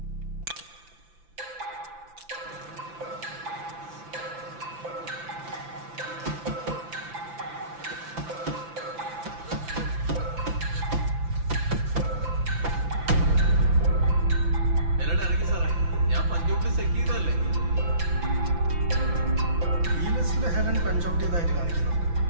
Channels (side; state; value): left; late; 5.9 ms